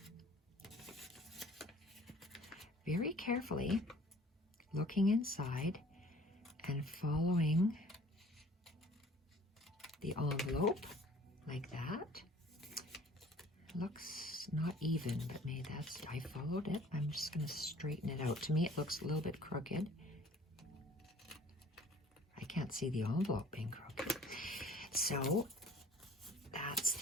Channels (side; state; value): both; normal; correlation 0.52